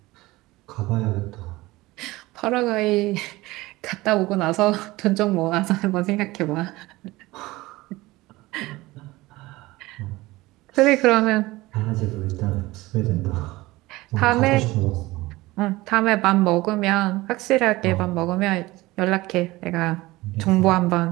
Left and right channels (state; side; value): quieter; left; 19.6 dB